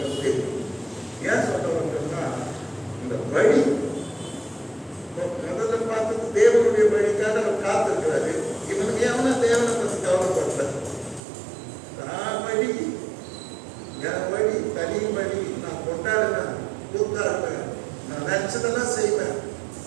தெரியும். ஏன் சொல்றவங்கன்னா இந்த வழி முதல்ல பார்த்தது தேவனுடைய வழிக்காக அவர் காத்திருக்கிறாரு. இவனுக்கு எவனா தேவனை பற்றி கவலைப்பட்ட வழி, என் வழி தனி வழி, நான் கொண்டாடுவேன், கூத்தாடுவேன், நான் நினைச்சதெல்லாம் செய்வேன்.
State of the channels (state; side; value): drops out; left; at 11.2 s